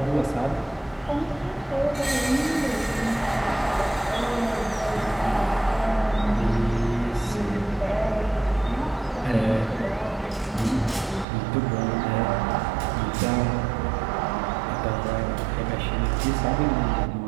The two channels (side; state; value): left; drops out; at 11.2 s